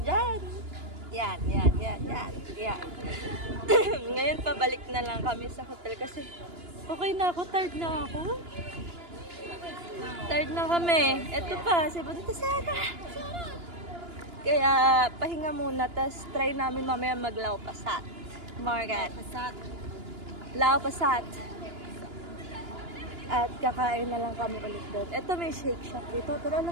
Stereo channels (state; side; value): late; left; 2.9 ms